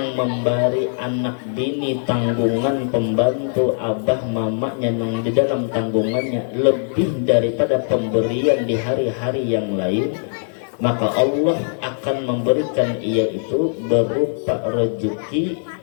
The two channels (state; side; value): silent; right; digital silence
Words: memberi anak bini tanggungan pembantu abah mamanya nang di dalam tanggungannya lebih daripada pemberian di hari-hari yang lain, maka Allah akan memberikan ia itu berupa rezeki